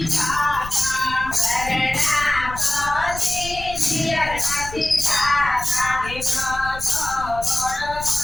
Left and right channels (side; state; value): left; noise; rumble, 12 dB below the sound